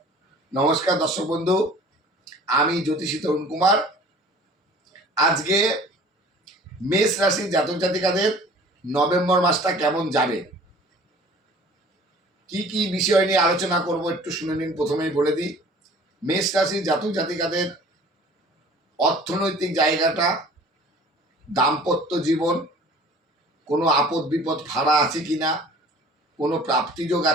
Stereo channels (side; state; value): both; normal; correlation 0.48